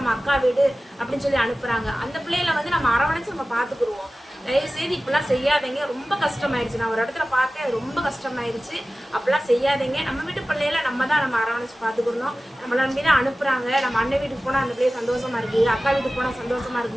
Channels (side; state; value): both; normal; correlation 0.96